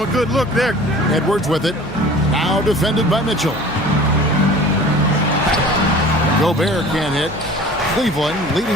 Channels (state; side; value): noise; left; hum, 18 dB below the sound